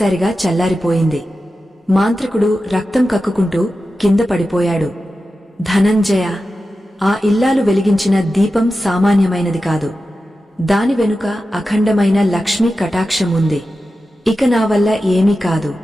చల్లారిపోయింది. మాంత్రికుడు రక్తం కక్కుకుంటూ కింద పడిపోయాడు. ధనంజయ, ఆ ఇల్లాలు వెలిగించిన దీపం సామాన్యమైనది కాదు. దాని వెనుక అఖండమైన లక్ష్మీ కటాక్షం ఉంది. ఇక నా వల్ల ఏమీ కాదు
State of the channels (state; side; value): normal; both; correlation 0.92